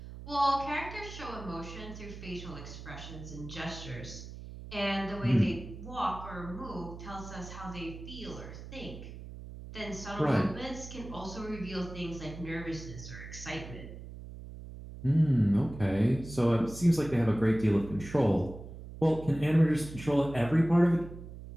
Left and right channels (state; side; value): noise; right; hum, 12 dB below the sound